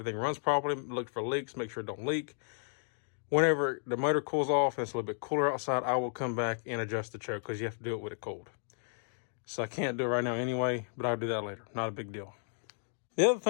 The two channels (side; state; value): right; silent; 56 dB below the other